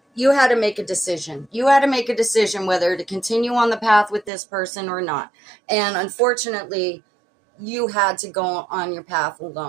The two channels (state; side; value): drops out; left; at 4.3 s